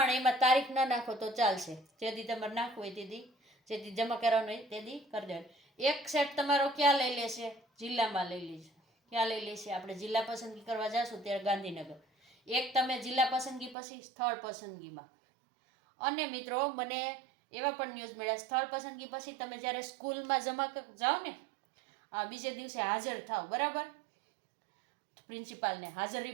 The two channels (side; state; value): left; drops out; at 13.8 s